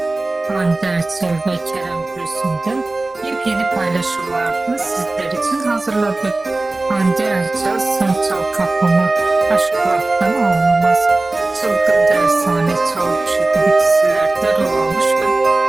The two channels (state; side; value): quieter; left; 3.1 dB